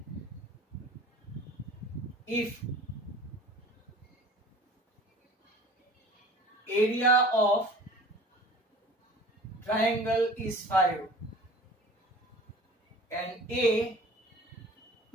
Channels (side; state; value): both; normal; correlation 0.44